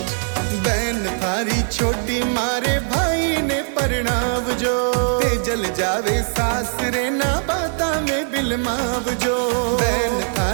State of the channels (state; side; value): silent; left; 62 dB below the other